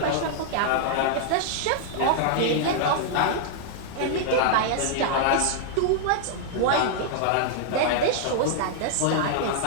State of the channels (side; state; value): both; different; correlation -0.01